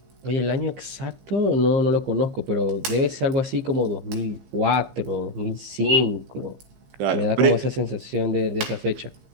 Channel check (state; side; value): late; left; 15 ms